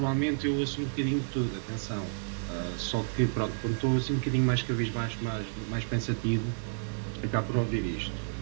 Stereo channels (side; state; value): left; silent; digital silence